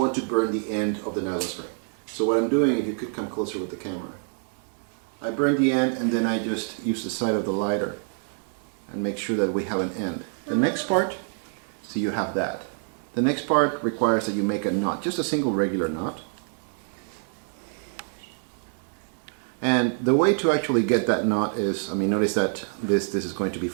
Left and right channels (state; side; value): silent; left; 61 dB below the other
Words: to burn the end of the nylon string. So what I'm doing, if you could come closer with the camera, I burn the end and then I just use the side of the lighter and make sure that we have an end. The next part, so you have that. The next part requires that you make a knot, just a single regular knot. And the way to actually get that knot is, notice that this is going to be